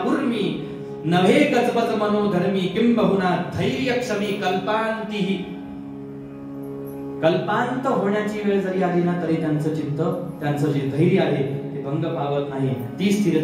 उर्मी, नव्हे गजबज मनोधर्मी, किंबहुना धैर्य क्षमी कल्पांतीही. कल्पांत होण्याची वेळ जरी आली ना तरी त्यांचं चित्त, त्यांचं जे धैर्य आहे ते भंग पावत नाही. ती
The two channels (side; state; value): both; identical; correlation 1.00